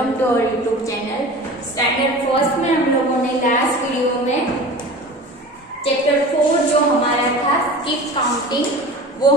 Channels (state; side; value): normal; both; correlation 0.37